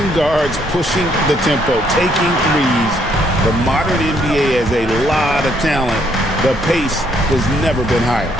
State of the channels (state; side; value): normal; both; correlation 0.70